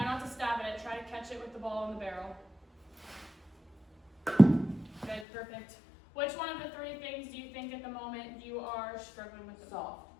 not to stab at it. Try to catch it with the ball in the barrel. Good, perfect. Which one of the 3 things do you think at the moment you are struggling with the ball?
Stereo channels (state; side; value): drops out; right; at 5.2 s